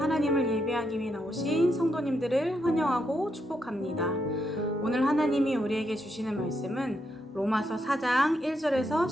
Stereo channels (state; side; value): normal; both; correlation 0.81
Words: 예배하기 위해 나오신 성도님들을 환영하고 축복합니다. 오늘 하나님이 우리에게 주시는 말씀은 로마서 4장 1절에서